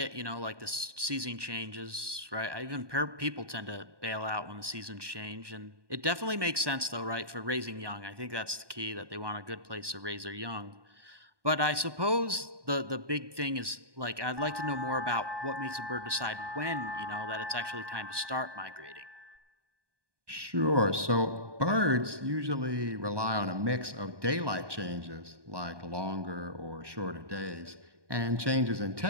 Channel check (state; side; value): late; left; 1.2 ms